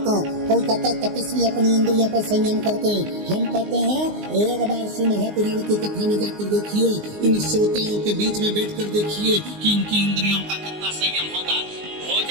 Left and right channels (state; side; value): late; left; 19 ms